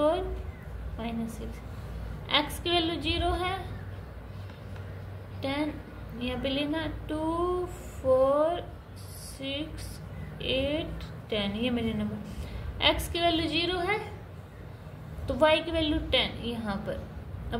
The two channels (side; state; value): both; identical; correlation 1.00